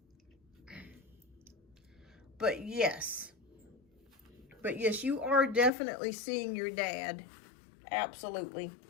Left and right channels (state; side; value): drops out; right; at 5.7 s